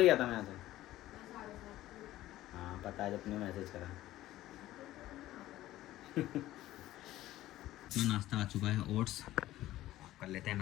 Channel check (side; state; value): right; quieter; 15.1 dB